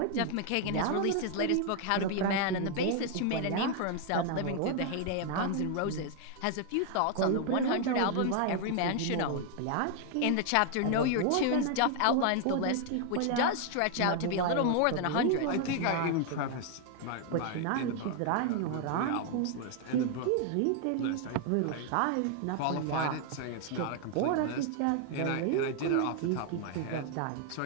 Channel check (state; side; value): different; both; correlation 0.00